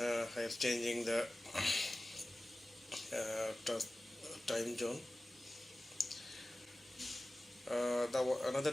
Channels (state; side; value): normal; both; correlation 0.96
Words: am changing the time zone. Another